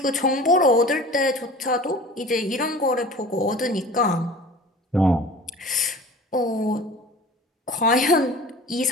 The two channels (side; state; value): both; normal; correlation 0.41